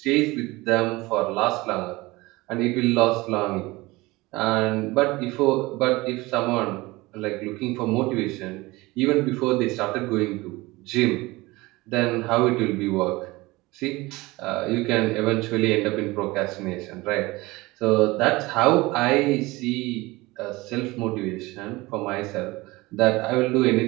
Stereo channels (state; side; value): quieter; left; 21.4 dB